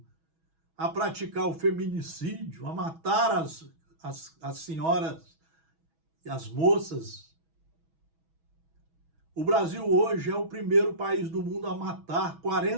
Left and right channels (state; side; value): late; left; 6.2 ms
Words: a praticar o feminicídio, a matar as senhoras e as moças. O Brasil hoje é o primeiro país do mundo a matar